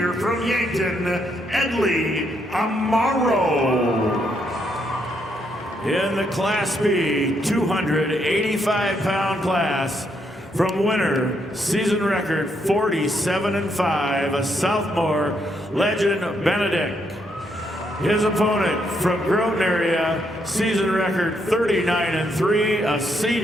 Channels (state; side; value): normal; both; correlation 0.76